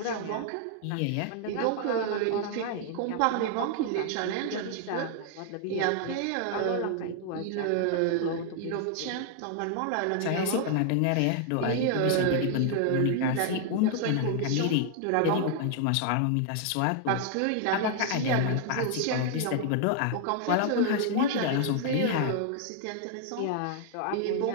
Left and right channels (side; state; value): both; different; correlation 0.00